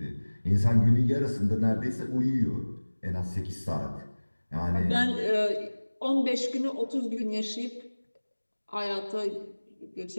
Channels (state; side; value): inverted; both; correlation -1.00